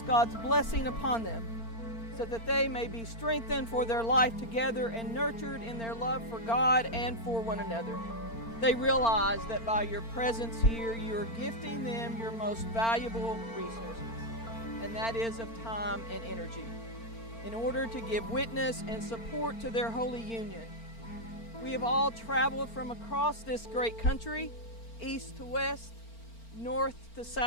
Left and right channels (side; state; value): right; late; 4.4 ms